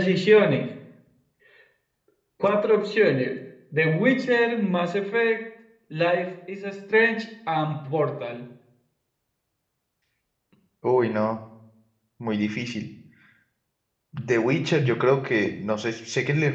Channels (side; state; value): both; identical; correlation 1.00